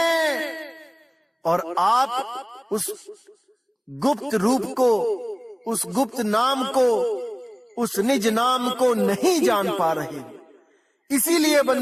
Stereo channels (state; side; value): identical; both; correlation 1.00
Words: और आप उस गुप्त रूप को, उस गुप्त नाम को, उस निज नाम को नहीं जान पा रहे। इसीलिए